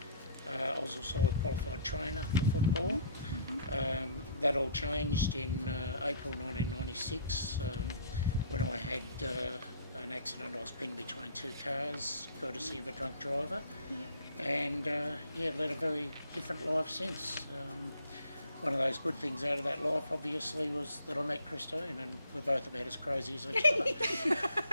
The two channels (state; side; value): inverted; both; correlation -0.56